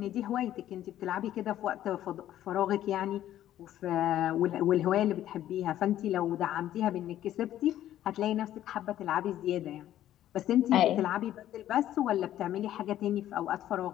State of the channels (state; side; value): quieter; right; 12.4 dB